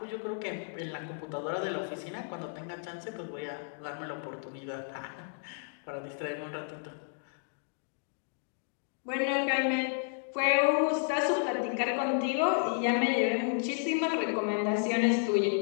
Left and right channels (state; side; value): silent; right; digital silence